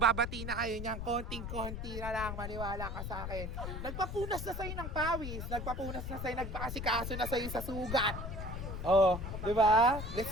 na kayo niyan. Konting-konti na lang. Maniwala ka sa akin. Nagpapunas na sa'yo ng pawis. Nagpapunas na sa'yo. Nagpakasikaso na sa'yo sa sugat. Oh, di ba? Let's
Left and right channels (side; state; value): left; noise; rumble, 6 dB below the sound